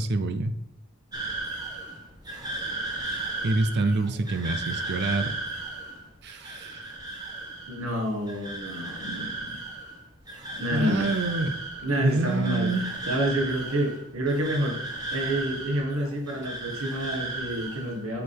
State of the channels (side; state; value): both; normal; correlation 0.54